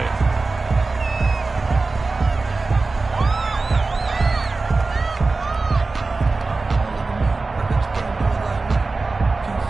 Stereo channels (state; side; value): quieter; left; 3.7 dB